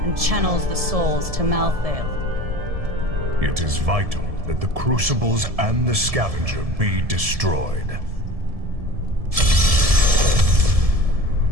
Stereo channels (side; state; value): left; late; 1.7 ms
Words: and channels the souls to Malthael. It is vital that the crucibles and the scavenger be destroyed.